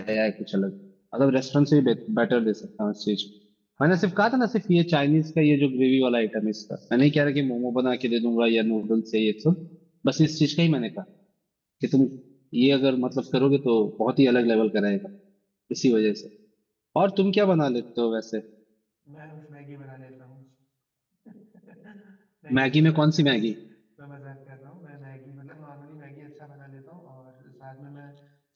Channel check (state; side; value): identical; both; correlation 1.00